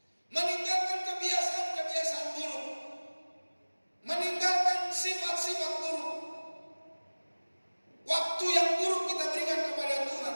meninggalkan kebiasaan-kebiasaan buruk, meninggalkan sifat-sifat buruk. Waktu yang buruk kita berikan kepada Tuhan,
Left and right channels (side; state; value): both; inverted; correlation -1.00